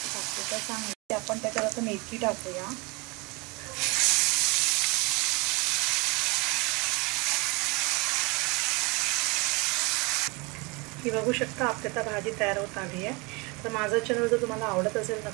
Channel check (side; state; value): left; quieter; 27.6 dB